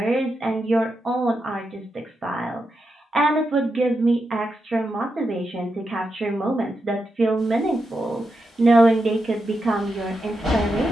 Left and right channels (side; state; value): both; normal; correlation 0.87